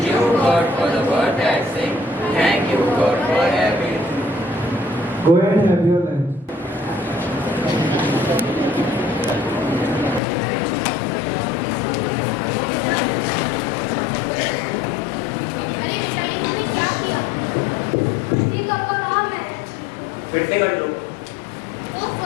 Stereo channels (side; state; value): right; drops out; at 10.2 s